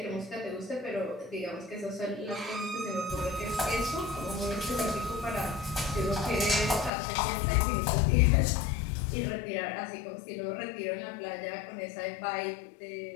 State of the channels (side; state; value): right; drops out; at 6.9 s